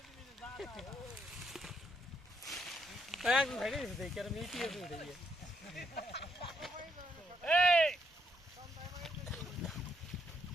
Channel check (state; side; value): normal; both; correlation 0.75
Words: একদম সাইডে দিছে দেখ আর মিটি আছে উড়ে গিয়ে।